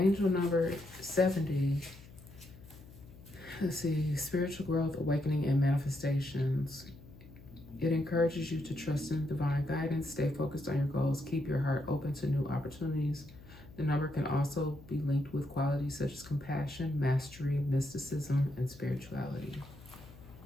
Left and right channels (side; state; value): left; noise; hum, 19 dB below the sound